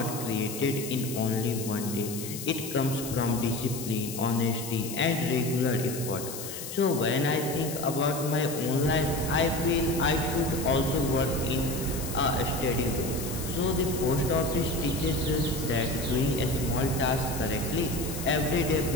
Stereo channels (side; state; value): left; noise; hiss, 9 dB below the sound